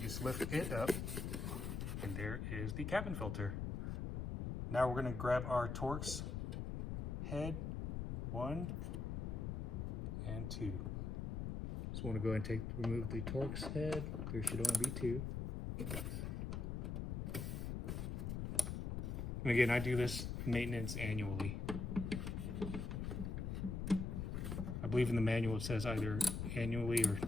just lift it up, and there is the cabin filter. Now we're going to grab our Torx Head 1 and 2. Just want to go ahead and remove the Torx Head. There should only be 2. And again, I do this maintenance annually. I believe in the manual it says either annually or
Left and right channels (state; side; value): noise; left; rumble, 2 dB below the sound